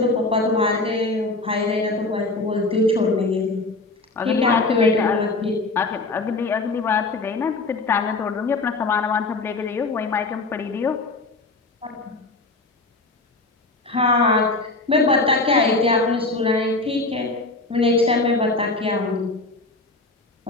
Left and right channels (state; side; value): quieter; right; 3.3 dB